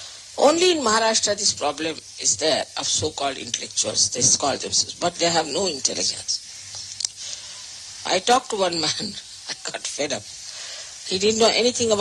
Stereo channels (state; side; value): identical; both; correlation 1.00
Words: Only in Maharashtra this problem is there of so-called intellectuals. They call themselves, but they have no intelligence. I talked to one man, I got fed up. He didn't know anything